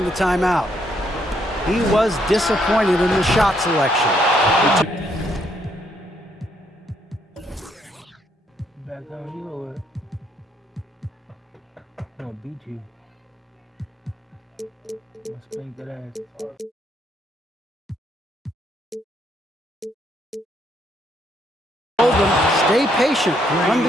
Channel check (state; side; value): normal; both; correlation 0.72